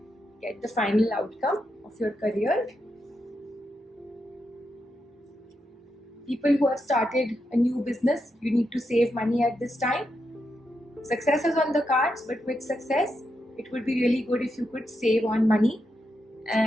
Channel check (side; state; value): both; normal; correlation 0.84